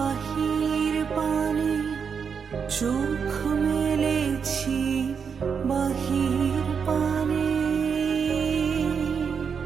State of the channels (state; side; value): quieter; left; 6.4 dB